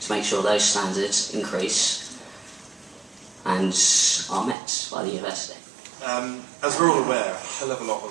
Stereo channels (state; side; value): drops out; left; at 4.5 s